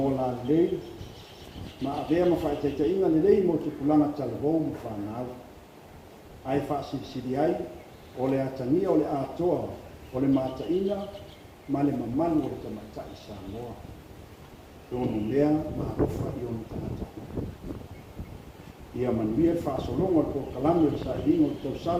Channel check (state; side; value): identical; both; correlation 1.00